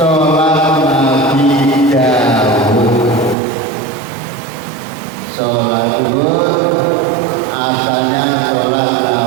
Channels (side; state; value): left; drops out; at 3.4 s